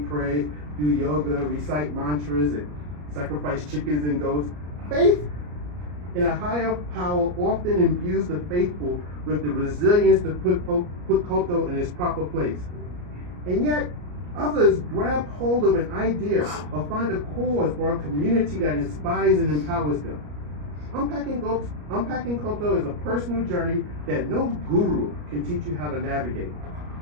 pray, do yoga, recite mantras, and sacrifice chickens and goats. Faith in a higher power often imbues the faithful with the resilience to put koto in its proper place. And yet, others grab hold of an idea or find a cause or a community that inspires and empowers them. Unpacking koto is a personal journey that no guru can teach you how to navigate.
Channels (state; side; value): late; left; 34 ms